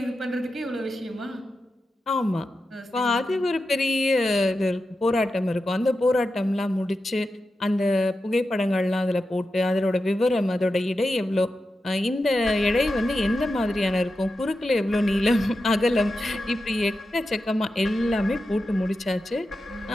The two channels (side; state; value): both; normal; correlation 0.90